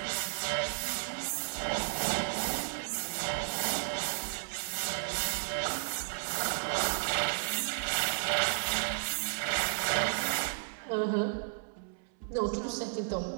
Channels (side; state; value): left; silent; 56 dB below the other